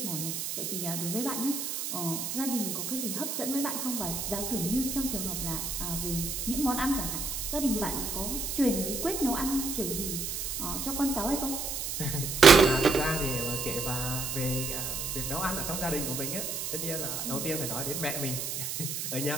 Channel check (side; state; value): right; noise; hiss, 3 dB below the sound